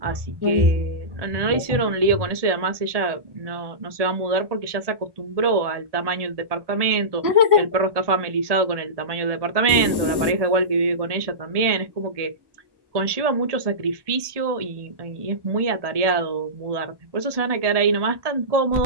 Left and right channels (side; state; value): left; late; 1.2 ms